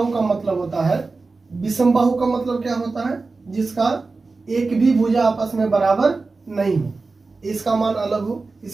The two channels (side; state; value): left; quieter; 3.9 dB